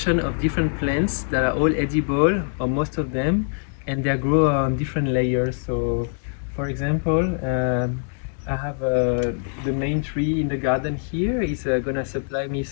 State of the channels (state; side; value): silent; right; digital silence